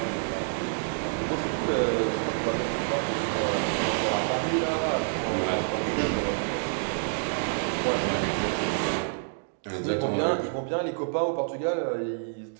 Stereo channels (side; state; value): left; silent; digital silence